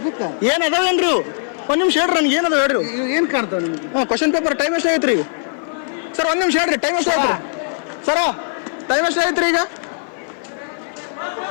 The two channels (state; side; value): silent; right; 55 dB below the other